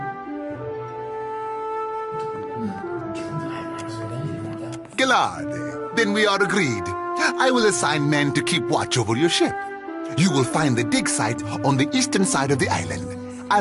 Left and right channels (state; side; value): identical; both; correlation 1.00